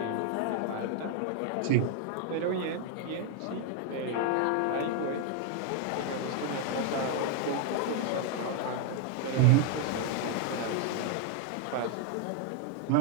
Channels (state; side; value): different; both; correlation 0.00